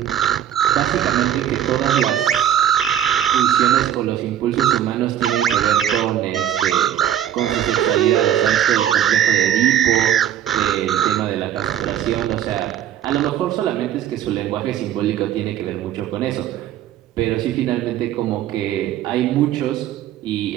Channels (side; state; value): left; quieter; 10.6 dB